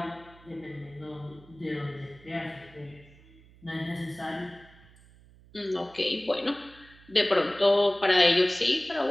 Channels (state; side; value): noise; right; hum, 25 dB below the sound